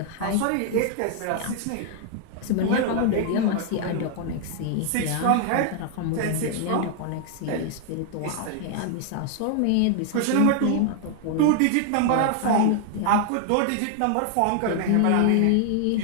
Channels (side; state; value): both; different; correlation 0.00